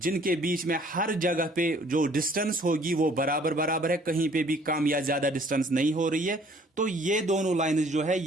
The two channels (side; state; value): both; normal; correlation 0.57